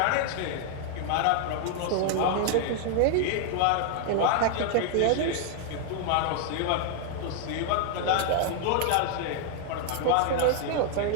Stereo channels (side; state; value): both; different; correlation 0.00